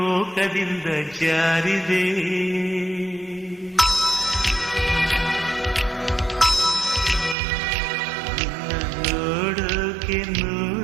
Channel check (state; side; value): drops out; left; at 7.4 s